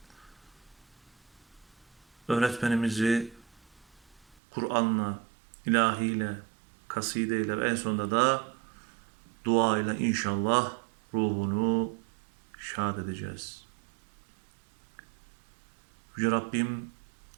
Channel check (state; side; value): drops out; left; at 4.4 s